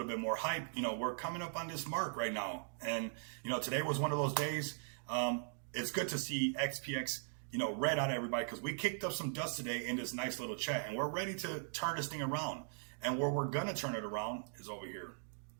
bit more hype. We're coming up on this mark right now. And, today was one of those days. It's good to see XPX, red out everybody, because we kicked up some dust today in this nice little chat, and we're ready to turn this thing around. And where we're going to turn it around is over here.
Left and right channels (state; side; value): silent; left; digital silence